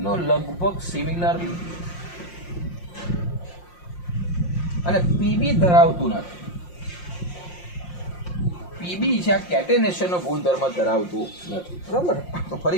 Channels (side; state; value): right; late; 5.7 ms